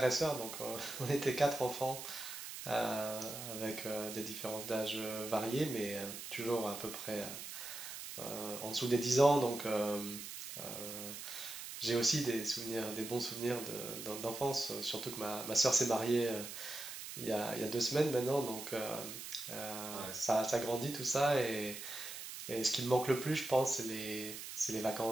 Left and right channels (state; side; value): noise; right; hiss, 9 dB below the sound